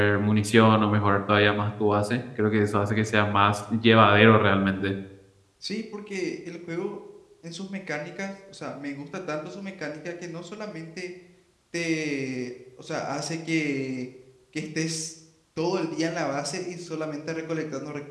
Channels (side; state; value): both; identical; correlation 1.00